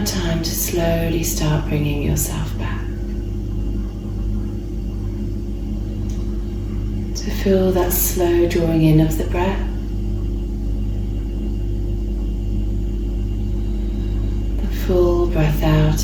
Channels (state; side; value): identical; both; correlation 1.00